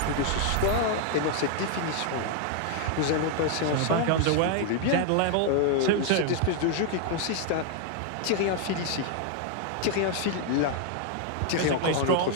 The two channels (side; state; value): both; different; correlation 0.00